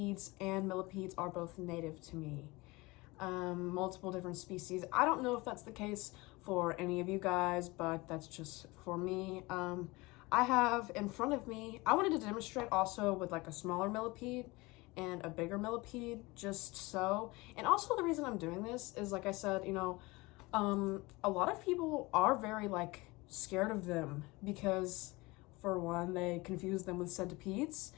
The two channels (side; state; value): right; quieter; 23.0 dB